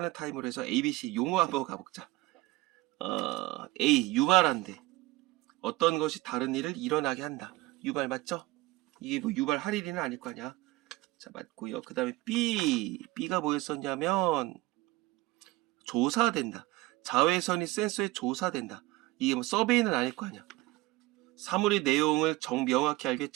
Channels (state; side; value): quieter; left; 19.8 dB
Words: 타임으로 해서 ABC 용어 한번 가보자. A, 유발한대. 어떤 것이 다른 일을 일어나게 한다. 유발 맞죠? 이게 뭐 유발할 일은 아닐 거 아니야. 자, 맞고요. 그 다음에 B가 뭐였었냐면 조사된다. 자외선이 센서에 조사된다. 이게 뭐 서베이는 아닐 거 아니야. 사물의 내용을 명확히 알게